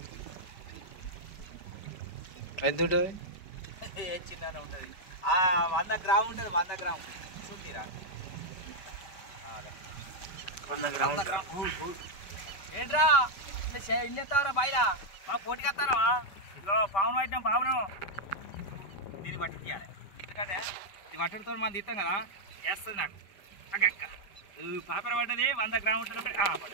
ఎంత ఉంటుంది ఏ చిన్ననే ఉంటుంది 100 గ్రాము ఉంటుంది 100 గ్రాము చూసిరా 100 గ్రాములు ఏంట్రా ఇల్లు ఎత్తావరా బయట మాకు పోటీకి వస్తారా ఇదిగో పావును పట్టినాం పావును దీన్ని పట్టి తీయాలి ఎందుకంటే ఇది పట్టుడితో మనం తీస్తాం కదా వేస్తుంది నాకు అక్క పాపర పడ్డది 100 గ్రాము ఉంటుంది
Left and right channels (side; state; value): right; late; 5.1 ms